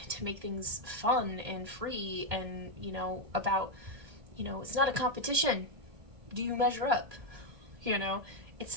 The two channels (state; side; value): late; left; 1.7 ms